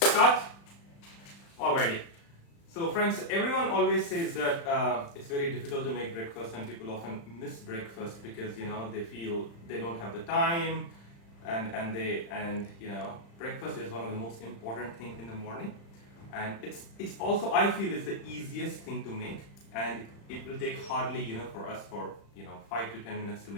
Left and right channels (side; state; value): right; late; 35 ms